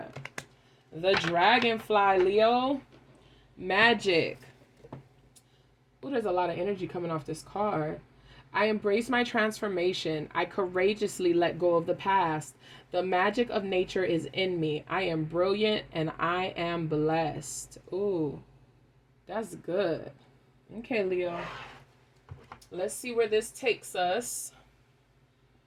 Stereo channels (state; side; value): identical; both; correlation 1.00